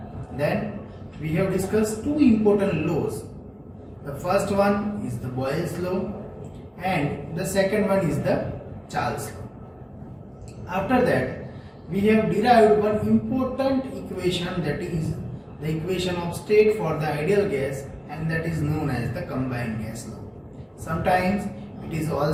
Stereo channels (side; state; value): both; identical; correlation 1.00